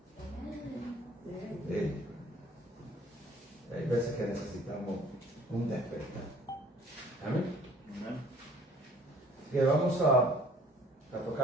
Amen. Sí. Hay veces que necesitamos un despertar. Amén. Amen. Que vamos a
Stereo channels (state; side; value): normal; both; correlation 0.55